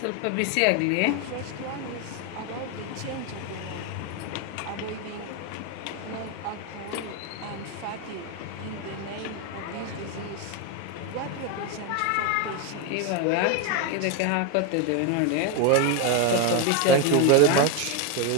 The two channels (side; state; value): both; different; correlation 0.02